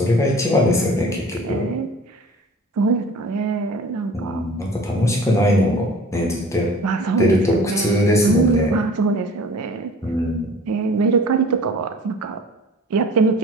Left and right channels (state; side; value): normal; both; correlation 0.45